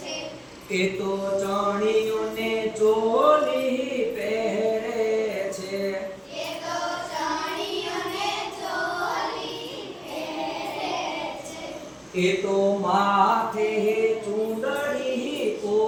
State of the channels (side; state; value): both; identical; correlation 1.00